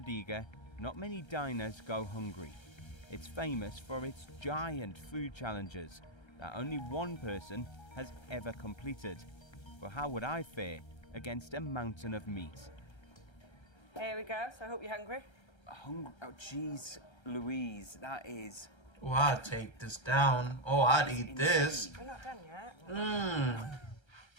not many diners go hungry. It's famous for its giant food challenges that only one person has ever completed. But how would I fare against a mountain of meat? Here we go, so I hope you're hungry. Hungry? Oh, jeez, Louise, that is... Oh, I'd take this down. Oh, I'd eat this. We're not done yet.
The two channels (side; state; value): right; late; 1.3 ms